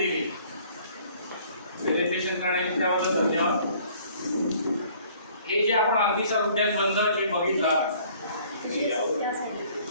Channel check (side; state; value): both; inverted; correlation -0.57